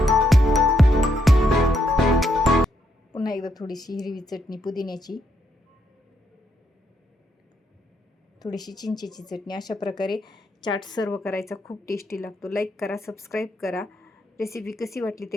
पुन्हा एकदा थोडीशी हिरवी चटणी पुदिन्याची, थोडीशी चिंचेची चटणी. अशा प्रकारे चाट सर्व करायचा, खूप टेस्टी लागतो. लाईक करा, सबस्क्राईब करा. रेसिपी कशी वाटली ते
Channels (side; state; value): both; normal; correlation 0.77